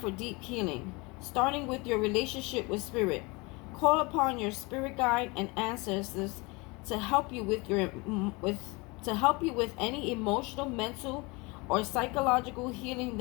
deep healing, starting with your relationship with Spirit. Call upon your spirit guide and ancestors to help you to help you with any emotional, mental, or psychological healing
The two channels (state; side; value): quieter; right; 26.4 dB